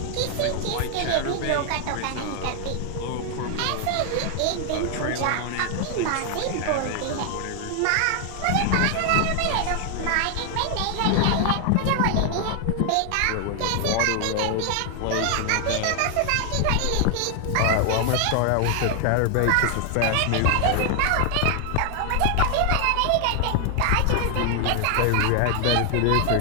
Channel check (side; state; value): both; different; correlation 0.00